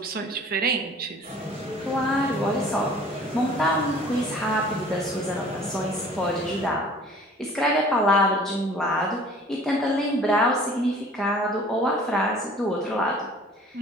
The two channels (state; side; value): normal; both; correlation 0.49